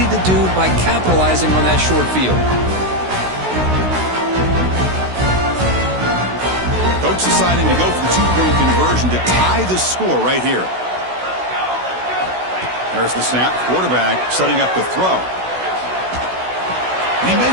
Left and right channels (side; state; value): left; late; 16 ms